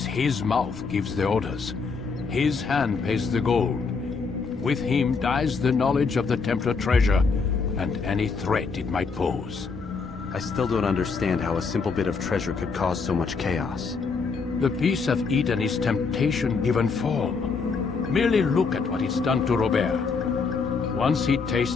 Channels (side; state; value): right; quieter; 4.9 dB